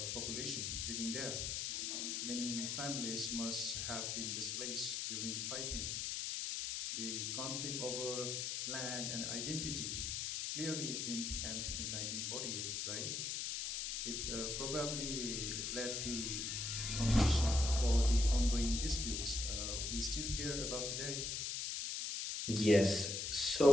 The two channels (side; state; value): left; noise; hiss, 2 dB below the sound